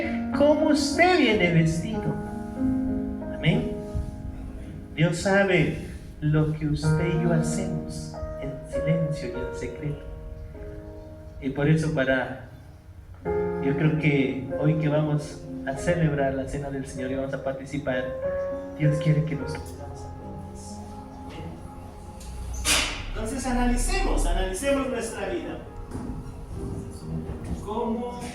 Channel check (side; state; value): both; identical; correlation 1.00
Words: cómo usted viene vestido. Amén. Dios sabe lo que usted y yo hacemos en silencio y en secreto. Y por eso yo creo que hoy que vamos a celebrar la cena del Señor y vamos a participar, Dios quiere que nos pongamos a todos. Entonces analicemos nuestra vida. ¿Cómo